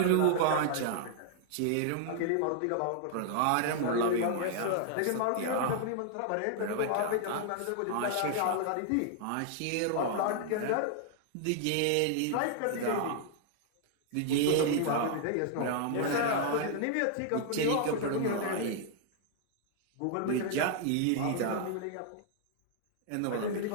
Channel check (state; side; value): different; both; correlation -0.01